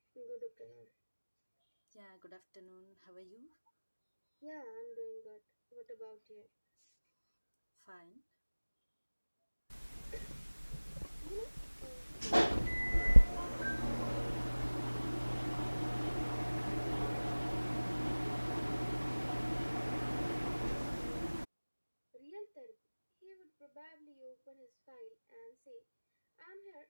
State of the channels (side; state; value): both; inverted; correlation -1.00